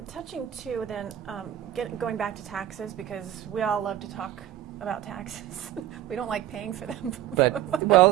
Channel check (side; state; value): left; quieter; 12.4 dB